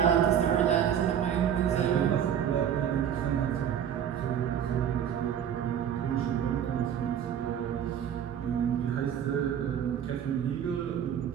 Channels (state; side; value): quieter; left; 9.2 dB